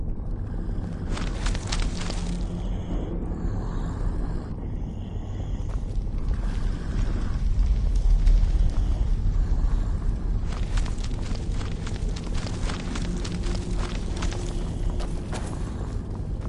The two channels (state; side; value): identical; both; correlation 1.00